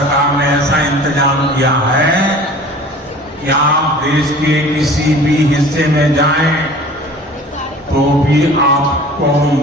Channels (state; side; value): normal; both; correlation 0.44